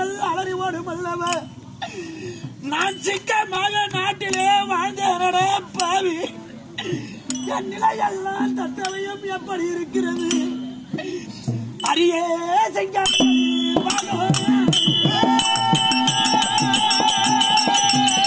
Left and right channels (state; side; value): identical; both; correlation 1.00